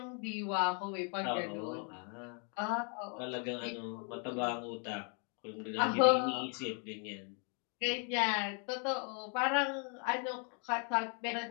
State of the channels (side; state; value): right; quieter; 39.6 dB